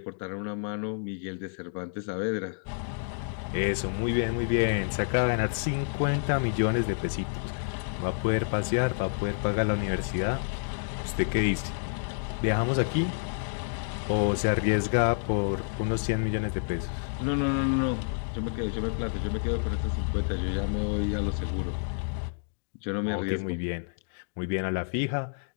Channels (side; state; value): right; silent; digital silence